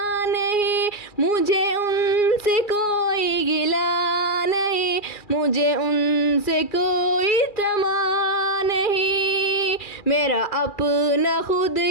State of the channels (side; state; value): right; late; 2.4 ms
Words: नहीं। मुझे उनसे कोई गिला नहीं, मुझे उनसे कोई तमा नहीं। मेरा अपना खुद